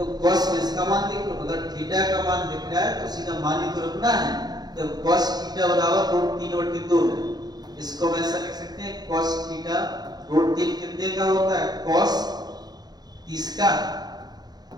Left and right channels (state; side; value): late; left; 0.19 ms